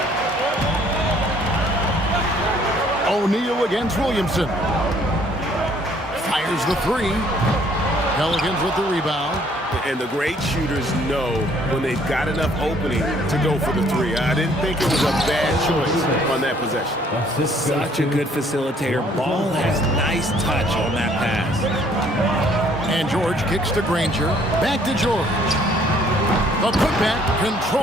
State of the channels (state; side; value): normal; both; correlation 0.61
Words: O'Neal against Williamson. Fires the three. Pelicans with the rebound. And the great shooters know when they've got enough opening to go for the three. I didn't think it was a bad choice on that possession. Such a good facilitator. Ball has nice touch on that pass. And George kicks to Granger. Back to George. The putback